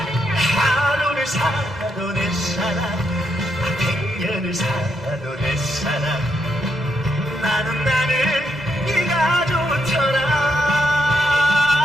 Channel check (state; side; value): normal; both; correlation 0.79